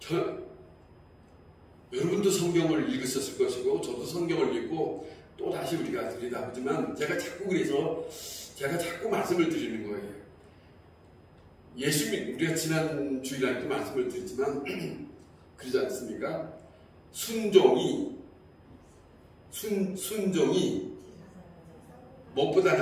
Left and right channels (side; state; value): both; identical; correlation 1.00